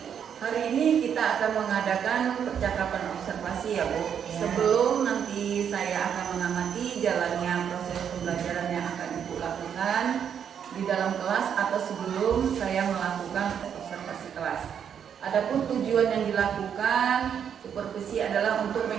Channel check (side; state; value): left; quieter; 8.2 dB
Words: Hari ini kita akan mengadakan percakapan observasi ya Bu. Ya. Sebelum nanti saya akan mengamati jalannya proses pembelajaran yang akan Ibu lakukan di dalam kelas atau sebelum saya melakukan observasi kelas. Adapun tujuan yang dilakukan supervisi adalah untuk